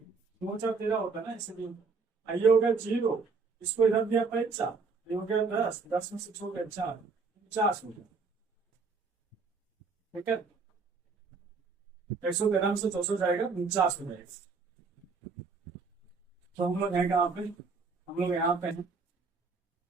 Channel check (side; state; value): left; quieter; 4.7 dB